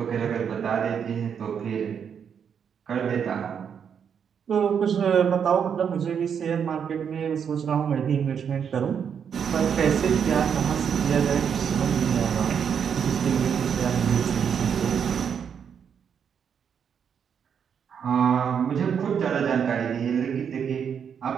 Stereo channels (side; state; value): left; quieter; 7.5 dB